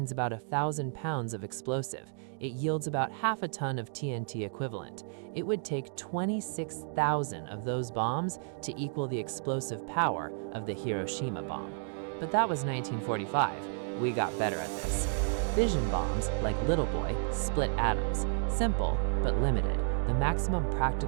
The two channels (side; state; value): left; silent; digital silence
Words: about 1,000 pounds of explosive. It yields about half a ton of TNT equivalent. It would take 26,000 of those bombs to equal the explosive power of the Hiroshima bomb. But that was 1945. We got better at this. Fission bombs, like Little Boy, split atoms. Simple, but limited. The maximum